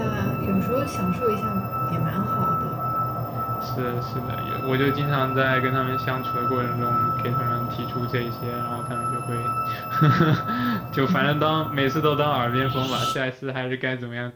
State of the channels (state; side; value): identical; both; correlation 1.00